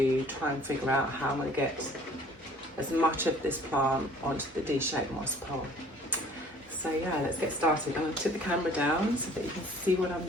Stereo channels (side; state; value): both; normal; correlation 0.53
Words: try and figure out how I'm going to get as much of this plant onto the D-shaped moss pole. So yeah, let's get started. I'm going to tip the camera down so that you can see what I'm